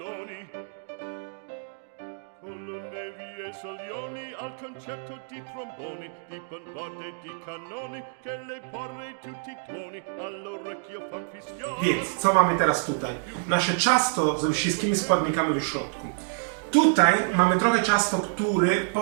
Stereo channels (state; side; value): silent; left; digital silence